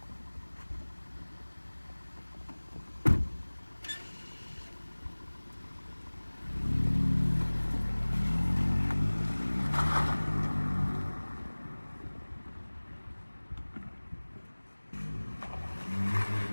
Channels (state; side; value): inverted; both; correlation -1.00